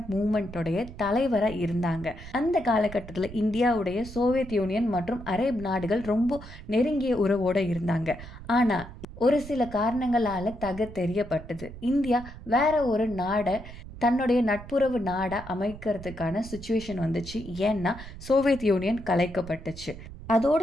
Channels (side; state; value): right; noise; rumble, 14 dB below the sound